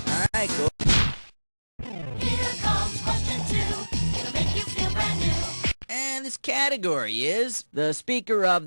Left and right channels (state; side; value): inverted; both; correlation -1.00